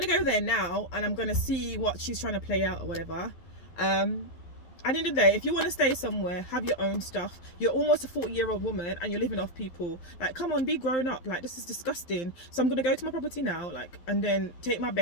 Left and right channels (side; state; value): right; late; 12 ms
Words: go there now and I'm gonna see what she's trying to play out or whatever. At the end of the day, if you want to stay somewhere, have your own stuff. You're almost a 40-year-old woman and you're living off people. Like, come on, be grown up. Like, this is disgusting. So I'm going to go to my property now, and then take my